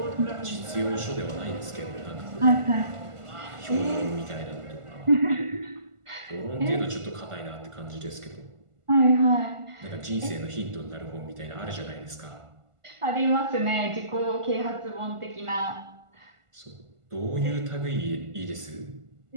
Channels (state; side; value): late; left; 1.5 ms